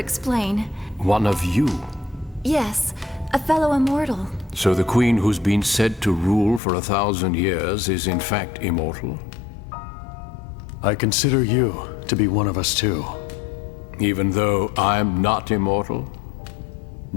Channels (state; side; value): drops out; right; at 6.6 s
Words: One of you? Yes, a fellow immortal. So the Queen who's been said to rule for 1,000 years is in fact immortal? I consider you to be one of us too. Even though I'm not immortal?